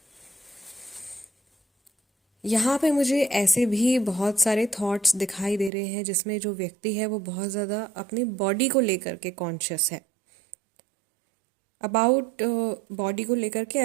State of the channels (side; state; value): left; drops out; at 5.7 s